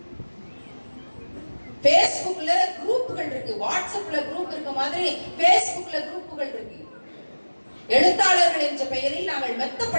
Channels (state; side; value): inverted; both; correlation -1.00